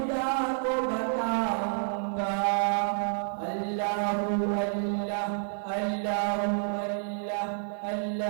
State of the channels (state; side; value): silent; left; 58 dB below the other